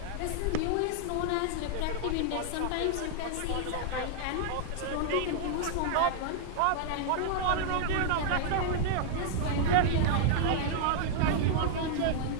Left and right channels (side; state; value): both; different; correlation 0.00